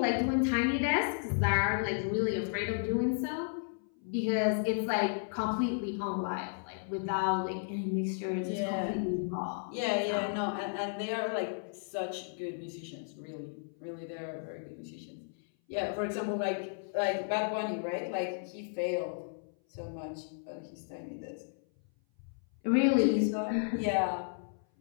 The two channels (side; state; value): right; silent; 55 dB below the other